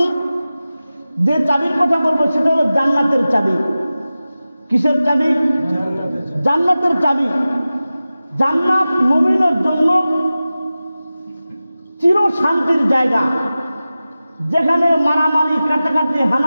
যে চাবির কথা বলবো সেটা হলো জান্নাতের চাবি। কিসের চাবি? জান্নাতের চাবি। জান্নাত মুমিনের জন্য চির শান্তির জায়গা, যেখানে মারামারি, কাটাকাটি,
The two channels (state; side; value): inverted; both; correlation -0.95